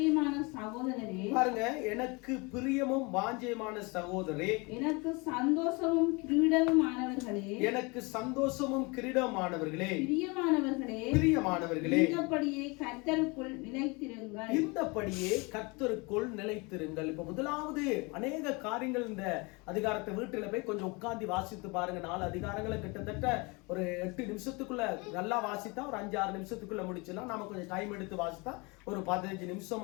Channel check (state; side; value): quieter; right; 27.8 dB